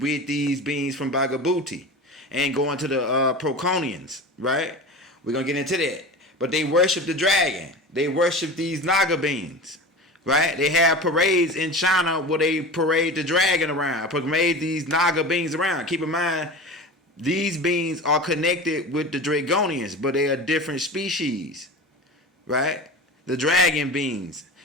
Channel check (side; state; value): both; normal; correlation 0.32